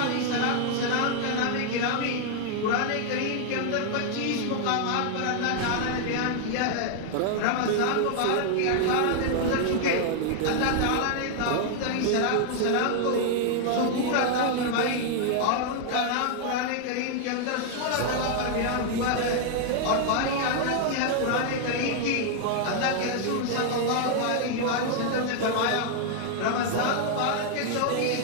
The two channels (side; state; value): both; different; correlation 0.00